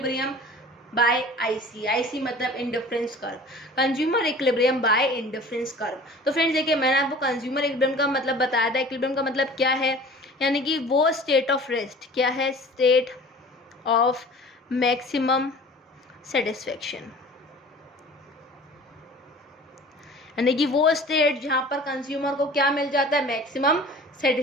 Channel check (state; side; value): normal; both; correlation 0.43